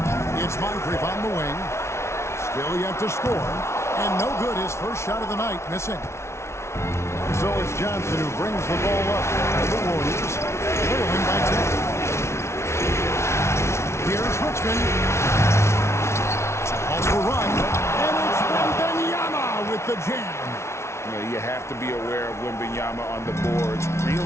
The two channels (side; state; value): right; late; 0.13 ms